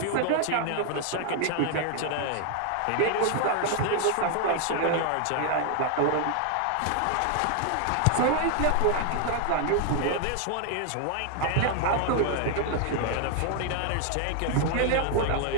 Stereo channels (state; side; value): different; both; correlation 0.00